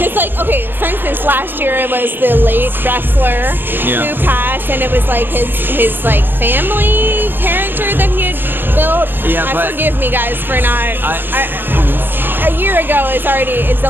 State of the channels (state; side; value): late; left; 0.098 ms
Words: like, okay, for instance, last year it was the late wrestler who passed, and it was like his like family character that he had built. Yeah, but forgive me, guys, for not. A year ago is it's a